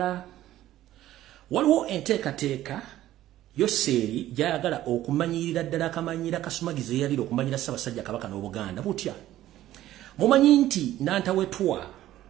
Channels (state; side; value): quieter; left; 14.0 dB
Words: Waliwo enteekateeka Yoseri gy'ayagala okumanyirira ddala akamanyira Kasumagizi eyalira okumanyira Ssaabasajja Kabaka n'Obuganda butya. Mumanyi nti Nantawetwa